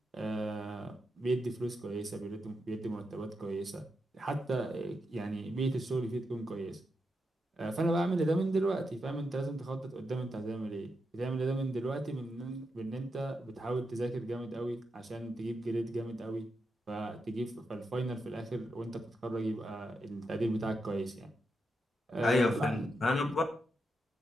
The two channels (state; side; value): normal; both; correlation 0.85